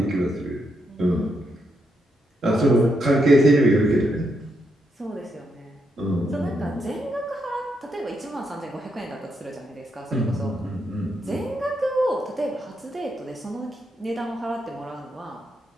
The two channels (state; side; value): normal; both; correlation 0.80